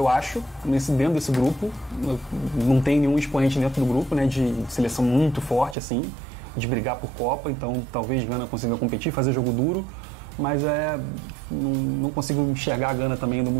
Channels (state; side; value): drops out; left; at 5.8 s